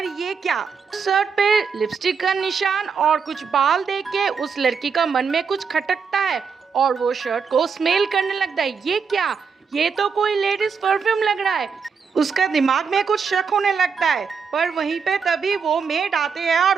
ये क्या, शर्ट पे लिपस्टिक का निशान और कुछ बाल देख के उस लड़की का मन में कुछ खटकता है और वो शर्ट को स्मेल करने लगता है। ये क्या, ये तो कोई लेडीज परफ्यूम लग रहा है। उसका दिमाग में कुछ शक होने लगता है। पर वहीं पे तभी वो मेड आते हैं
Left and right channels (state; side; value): quieter; left; 5.9 dB